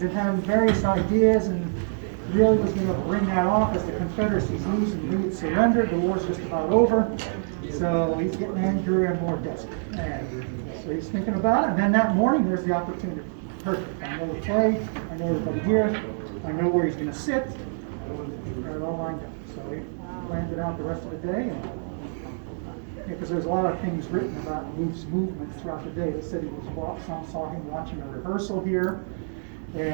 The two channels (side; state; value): left; silent; digital silence